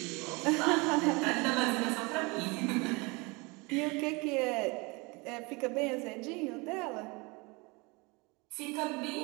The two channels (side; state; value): left; quieter; 27.0 dB